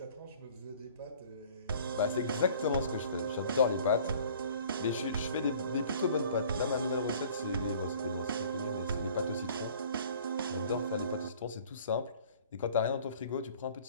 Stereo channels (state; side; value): inverted; both; correlation -0.52